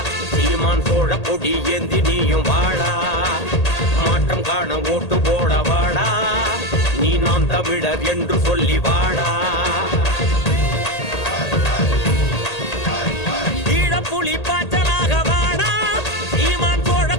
சீமான் சோழ கொடி ஏந்தி நீயும் வாடா, மாற்றம் காண ஓட்டு போட வாடா, நீ நாம் தமிழர் என்று சொல்லி வாடா. புலி பாய்ச்சலாக வாடா, சீமான் சோழ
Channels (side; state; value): right; late; 1.8 ms